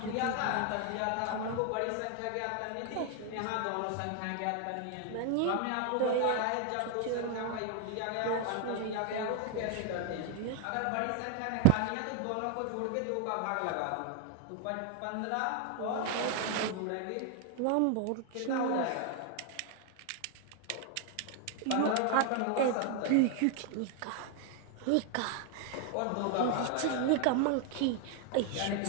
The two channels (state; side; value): different; both; correlation 0.01